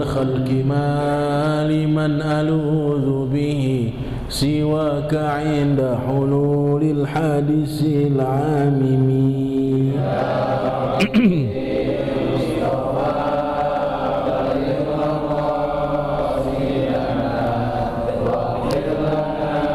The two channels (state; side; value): identical; both; correlation 1.00